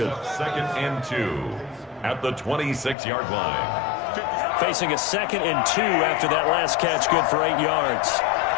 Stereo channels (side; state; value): right; drops out; at 3.0 s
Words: 2nd and 2 at the 26-yard line. Facing a 2nd and 2 after that last catch, good for 8 yards.